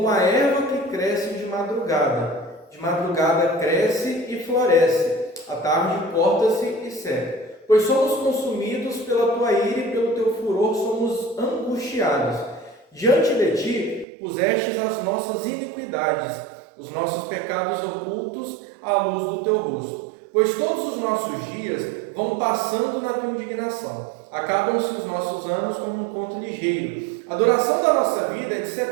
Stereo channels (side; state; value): left; drops out; at 14.1 s